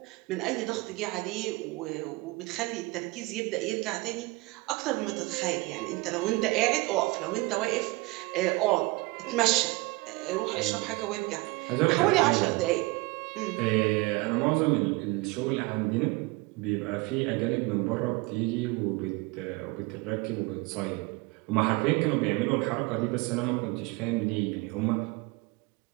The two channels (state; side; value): quieter; left; 24.0 dB